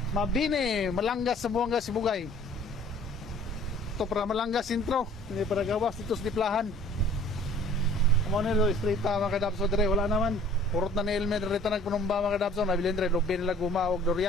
Mabini, Malanggas sa Buanga, Sibugay. Ito para Malanggas intro, hindi para gawas dito sa Diplahan. Amo nilo straight mga kadabso dire, wala naman. Purot na ni Elmer rito nagpunumba mga kadabso, nabilin dire lobby nila gumawag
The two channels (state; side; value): normal; both; correlation 0.51